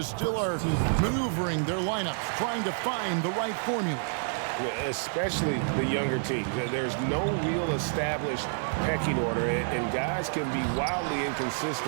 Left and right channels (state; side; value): silent; left; 59 dB below the other